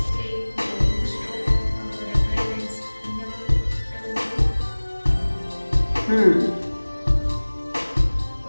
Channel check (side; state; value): both; inverted; correlation -1.00